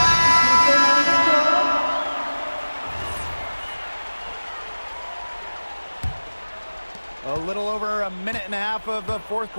A little over a minute and a half of the 4th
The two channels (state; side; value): inverted; both; correlation -1.00